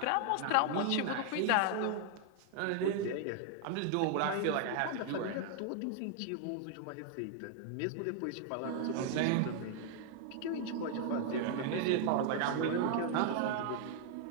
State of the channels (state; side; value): different; both; correlation 0.00